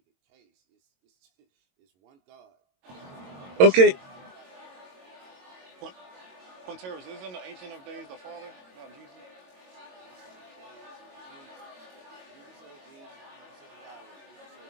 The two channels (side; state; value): left; late; 22 ms